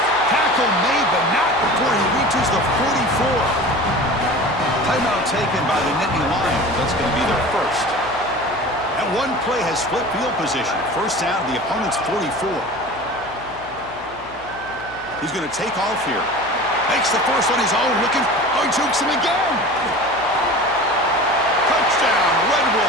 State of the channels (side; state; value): left; noise; hum, 22 dB below the sound